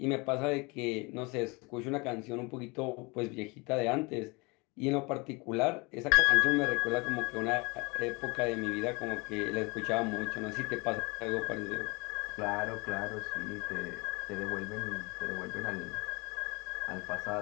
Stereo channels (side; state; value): right; quieter; 27.2 dB